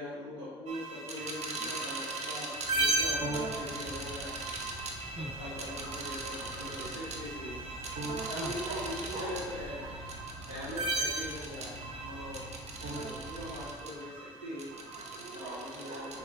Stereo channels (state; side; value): normal; both; correlation 0.25